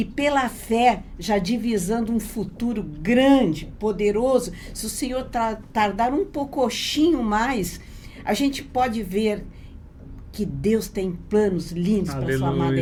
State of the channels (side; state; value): both; identical; correlation 1.00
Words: pela fé já divisando um futuro grande, poderoso. Se o Senhor tardar um pouquinho mais, a gente pode ver que Deus tem planos lindos para a sua amada